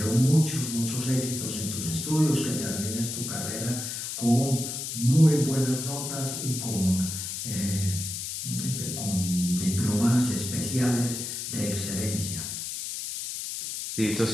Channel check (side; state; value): left; noise; hiss, 5 dB below the sound